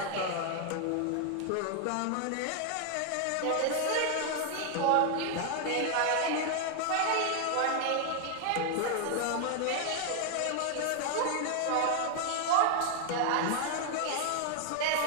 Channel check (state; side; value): different; both; correlation 0.00